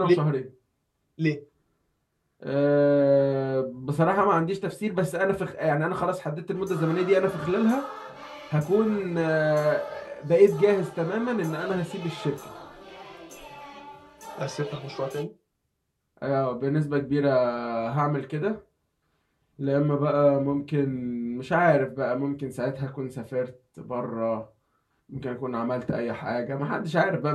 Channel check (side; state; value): both; identical; correlation 1.00